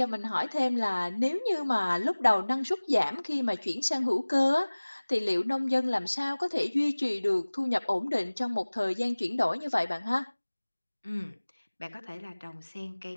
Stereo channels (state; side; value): inverted; both; correlation -1.00